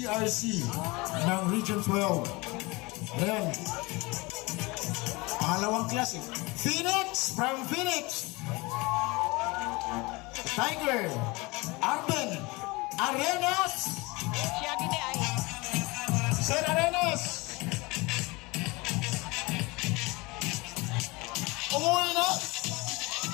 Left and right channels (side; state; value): right; quieter; 24.3 dB